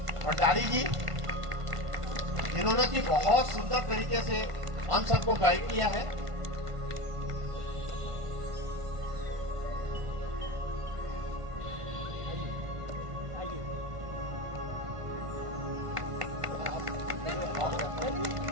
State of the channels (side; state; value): left; late; 1.5 ms